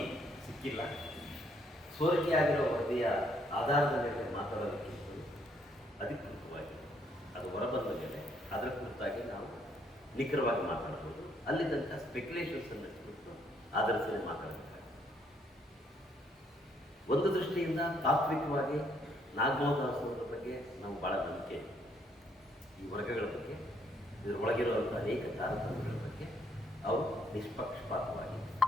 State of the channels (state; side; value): normal; both; correlation 0.69